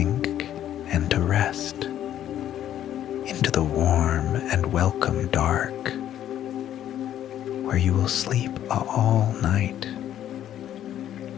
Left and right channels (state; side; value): quieter; right; 11.2 dB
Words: and to rest into the warm and welcome dark, where you will sleep all night.